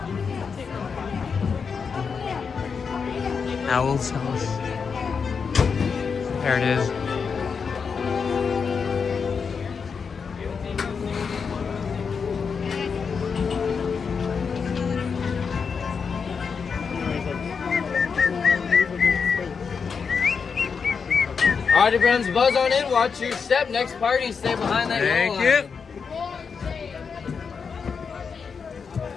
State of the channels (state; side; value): quieter; right; 5.8 dB